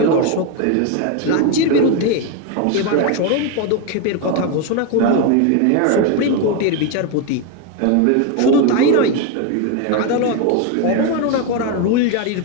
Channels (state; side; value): different; both; correlation 0.02